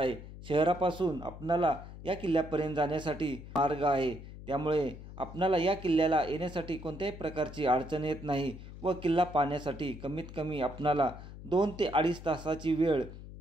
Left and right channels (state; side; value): noise; left; hum, 14 dB below the sound